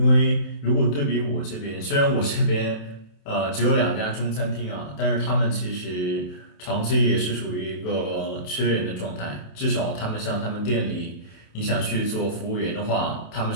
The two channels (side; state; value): right; late; 28 ms